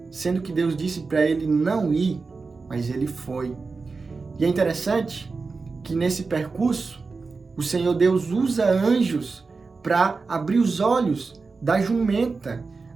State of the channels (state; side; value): quieter; left; 4.3 dB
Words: Sendo que Deus disse para ele não ir, mas ele foi. E é interessante que nesse percurso, o Senhor Deus usa anjos para abrir os olhos da jumenta,